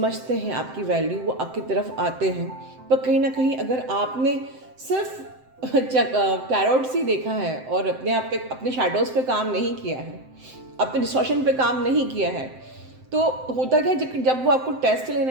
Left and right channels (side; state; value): left; late; 7.7 ms